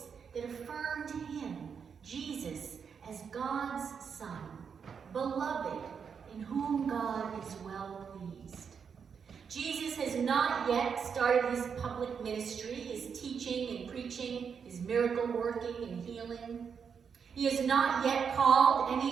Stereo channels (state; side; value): quieter; left; 6.6 dB